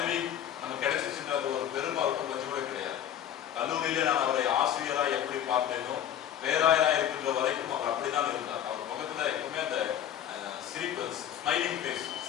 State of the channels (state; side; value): quieter; right; 10.2 dB